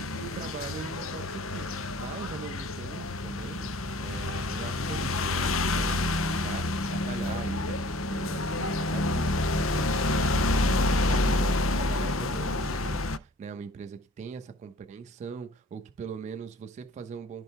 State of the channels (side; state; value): both; normal; correlation 0.51